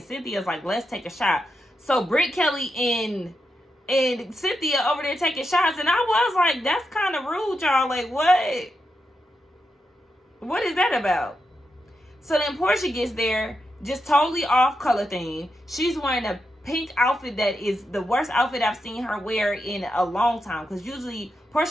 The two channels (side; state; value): both; normal; correlation 0.86